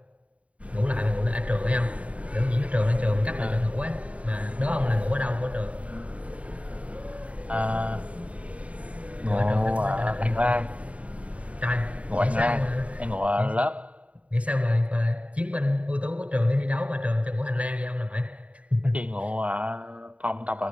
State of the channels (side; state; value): left; late; 0.066 ms